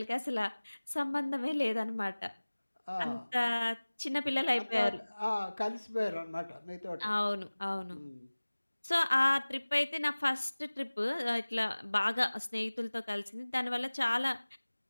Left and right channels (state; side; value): inverted; both; correlation -1.00